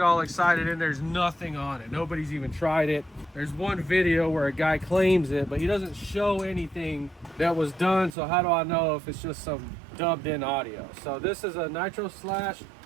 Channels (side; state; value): left; drops out; at 8.2 s